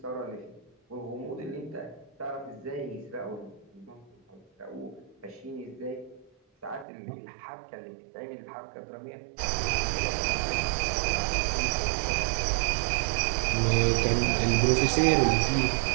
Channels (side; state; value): left; drops out; at 6.9 s